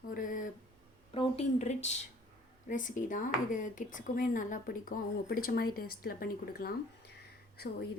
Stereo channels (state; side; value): normal; both; correlation 0.54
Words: ஒரு ப்ரோட்டீன் ரிச் ரெசிபி தான். இது கிட்ஸுக்குமே நல்லா பிடிக்கும். அவங்க பிடிச்ச மாதிரி டேஸ்ட்டில் பண்ணி கொடுக்கலாம். ஸோ